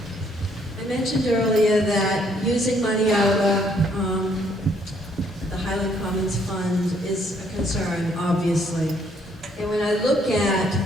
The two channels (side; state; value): both; normal; correlation 0.67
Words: I mentioned earlier that using money out of the Highland Commons Fund is a concern, obviously. And when I look